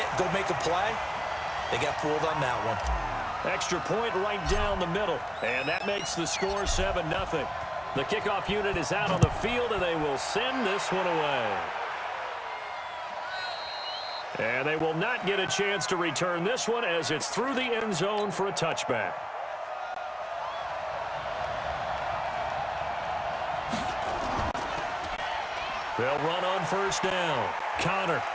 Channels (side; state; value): both; identical; correlation 1.00